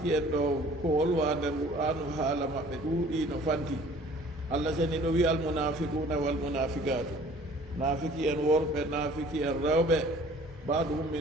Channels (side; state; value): both; normal; correlation 0.51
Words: en ɗo ko wolwa nder qur'anu haala maɓɓe ɗuuɗi no fanti allah seniɗo wi almunafiquna walmunafiqatu naafiki en worɓe naafiki en rewɓe baɗum